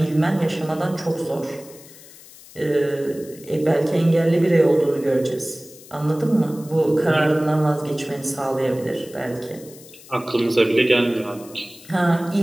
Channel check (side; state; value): left; noise; hiss, 20 dB below the sound